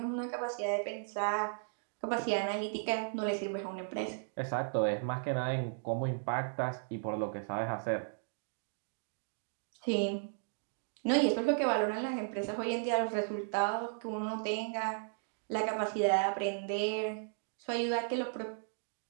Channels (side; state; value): left; silent; digital silence